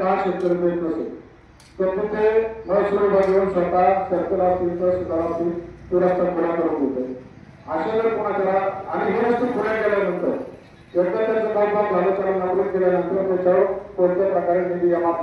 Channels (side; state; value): both; identical; correlation 1.00